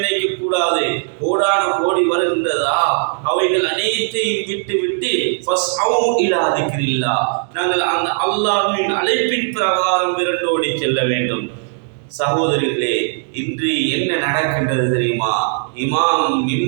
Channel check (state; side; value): silent; left; 67 dB below the other